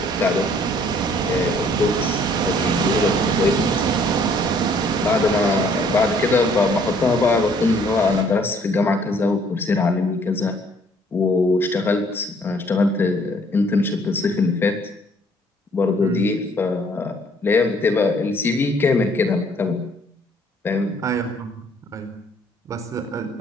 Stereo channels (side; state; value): both; normal; correlation 0.61